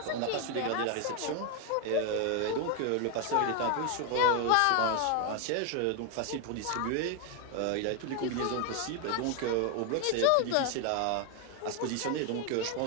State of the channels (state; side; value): different; both; correlation 0.01